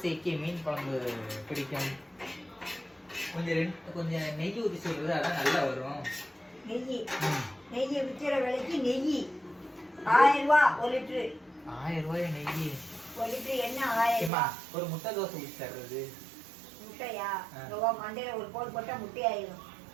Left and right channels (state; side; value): drops out; left; at 14.3 s